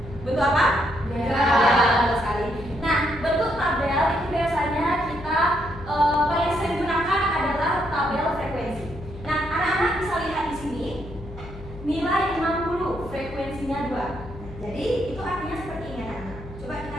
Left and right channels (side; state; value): left; noise; hum, 14 dB below the sound